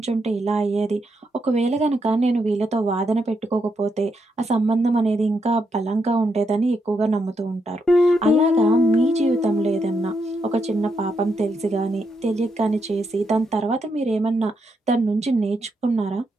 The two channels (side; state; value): both; normal; correlation 0.80